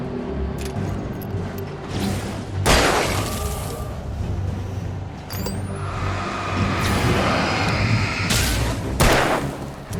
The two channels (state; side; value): identical; both; correlation 1.00